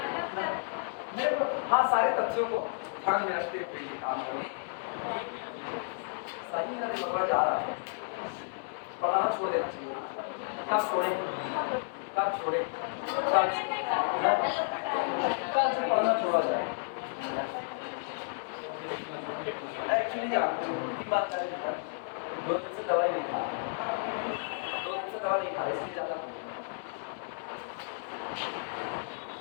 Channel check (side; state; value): right; silent; 56 dB below the other